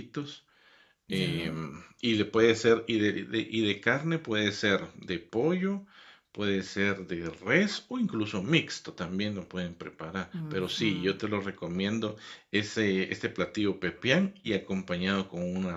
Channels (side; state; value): both; identical; correlation 1.00